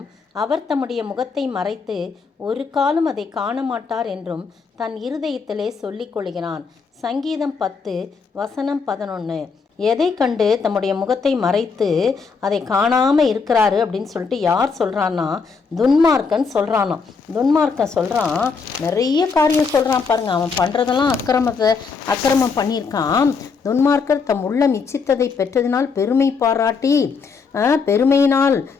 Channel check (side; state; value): right; quieter; 5.1 dB